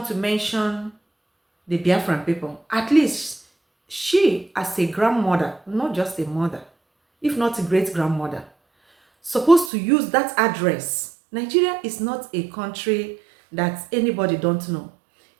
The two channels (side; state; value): left; drops out; at 9.7 s